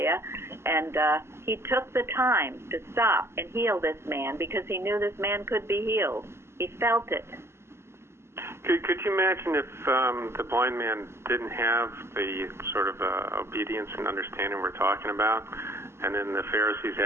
And he took the time to stop and heal this man because he knew this man could be healed. He felt it. Could you imagine if the blind man didn't have the sort of obedience and understanding we're talking about, and then the Pharisees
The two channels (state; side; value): late; left; 0.12 ms